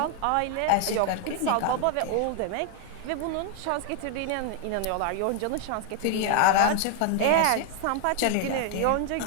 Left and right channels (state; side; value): different; both; correlation 0.00